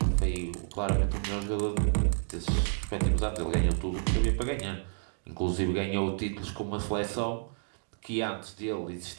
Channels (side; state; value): left; silent; digital silence